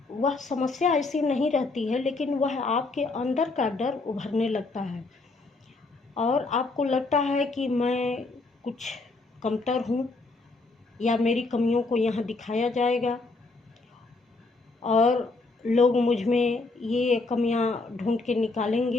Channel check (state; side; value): quieter; right; 3.5 dB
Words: वह समस्या ऐसी नहीं रहती है, लेकिन वह आपके अंदर का डर उभरने लगता है और आपको लगता है कि मैं कुछ कमतर हूँ या मेरी कमियों को यहाँ दिखाया जाएगा और लोग मुझ में ये कमियाँ ढूंढ के